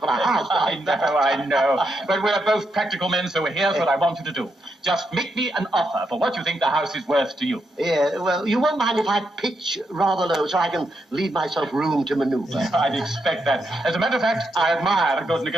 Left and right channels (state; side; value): normal; both; correlation 0.82